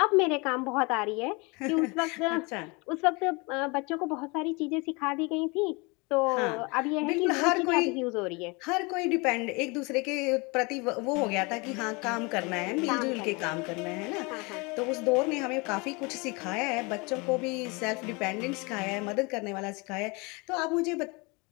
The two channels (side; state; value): right; quieter; 28.0 dB